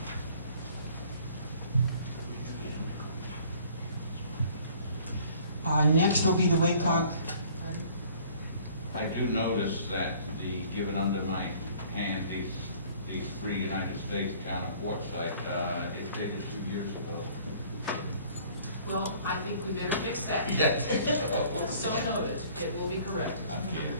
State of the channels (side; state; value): both; inverted; correlation -0.54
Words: Next will be the WACOG. I do notice that given under my hand, these 3 United States Town of Quartzsite, it's dated 2 years ago. Well, I think we better fix that. Yes. So noted. It will be corrected. Okay.